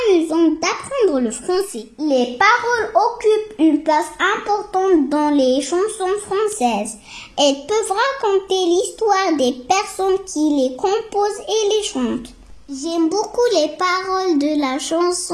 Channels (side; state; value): both; identical; correlation 1.00